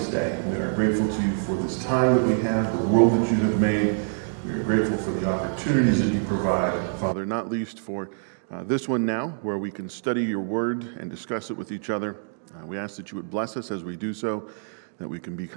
day. We are grateful to you for this time that we have, the world that you have made. We are grateful for the opportunities that you provide, Father, not least for this one now, where we can study your word and discuss it with each other. We ask that you would bless us as we do so, that we can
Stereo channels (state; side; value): silent; left; digital silence